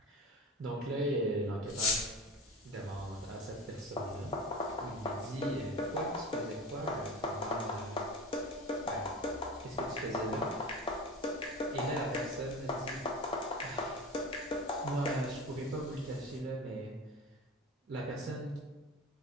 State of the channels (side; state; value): both; normal; correlation 0.31